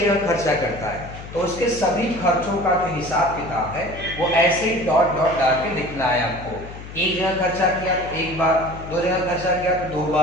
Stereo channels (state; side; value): noise; left; hum, 13 dB below the sound